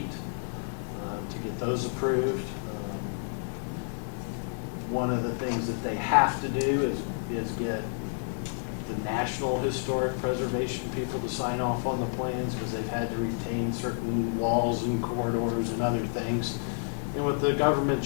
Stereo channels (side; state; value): right; silent; digital silence